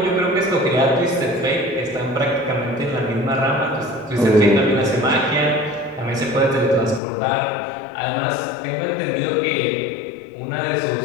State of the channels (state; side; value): drops out; right; at 7.0 s